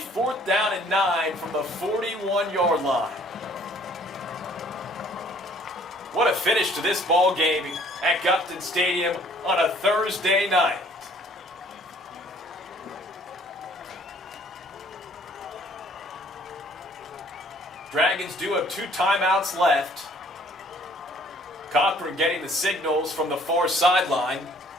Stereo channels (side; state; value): both; normal; correlation 0.58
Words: down and 9 from the 41-yard line. What a finish to this ball game at Gupton Stadium on a Thursday night. Dragons do have 2 timeouts left. Cochran getting the signals from the far sideline.